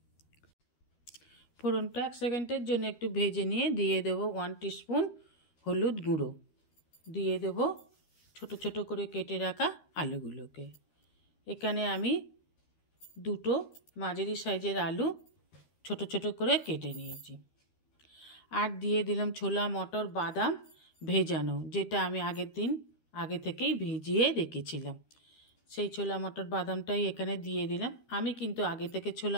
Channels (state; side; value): late; right; 13 ms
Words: ফোড়নটা 1 সেকেন্ডের জন্য একটু ভেজে নিয়ে দিয়ে দেব 1 টিস্পুন হলুদ গুঁড়ো, দিয়ে দেব ছোট ছোট করে কেটে রাখা আলুগুলোকে। এখানে আমি দুটো মাঝারি সাইজের আলু ছোট ছোট করে কেটে নিয়েছি। আর দিয়ে দিলাম ছোলা মটর বাদাম ভেজানো, যেটা আমি আগের দিন আগে থেকেই ভিজিয়ে রেখেছিলাম। সেই ছোলা মটর বাদামটাই এখানে দিয়ে দিলাম। আমি কিন্তু আগে থেকে